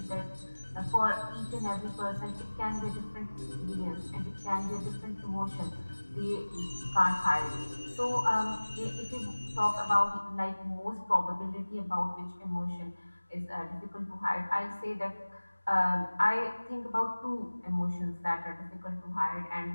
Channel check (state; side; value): inverted; both; correlation -1.00